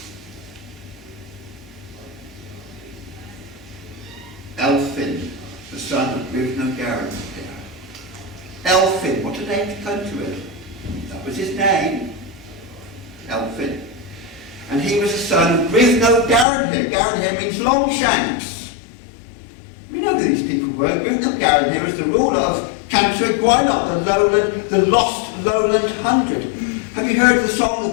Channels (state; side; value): drops out; right; at 16.4 s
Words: Elphin, the son of Merlin. Elphin, what a name to come to it. That was his name, Elphin. And he was the son of Gadarn. Gadarn means Longshanks. We know who these people were. Gadarn was the ruler of Canter Gwaelod, the lost lowland hundred. Have you heard of the song